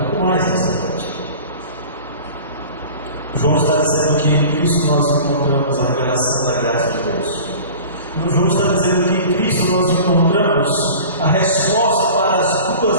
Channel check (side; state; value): both; inverted; correlation -0.40